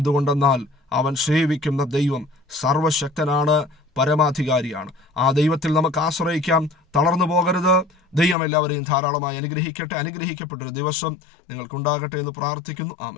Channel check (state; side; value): drops out; right; at 8.3 s